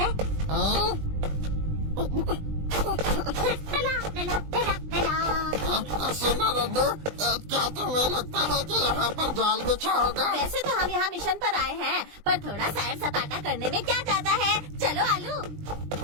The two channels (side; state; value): left; late; 20 ms